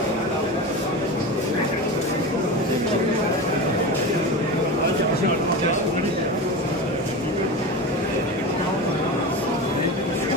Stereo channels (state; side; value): normal; both; correlation 0.26